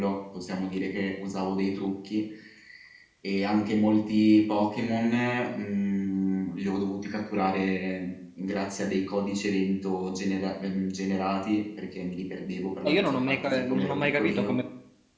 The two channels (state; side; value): identical; both; correlation 1.00